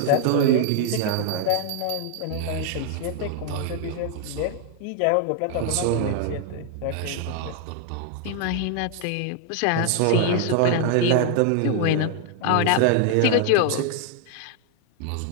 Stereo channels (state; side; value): different; both; correlation 0.00